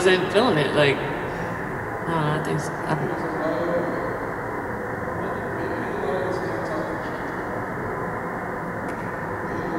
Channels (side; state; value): both; identical; correlation 1.00